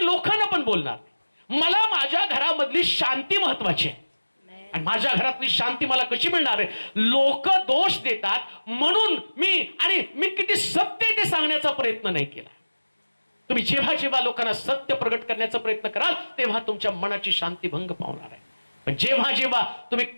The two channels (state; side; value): inverted; both; correlation -1.00